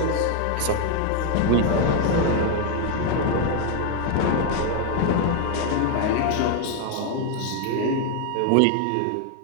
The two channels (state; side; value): different; both; correlation 0.01